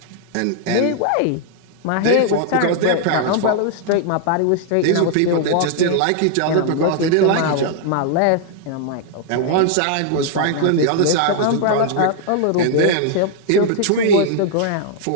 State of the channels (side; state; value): both; different; correlation 0.00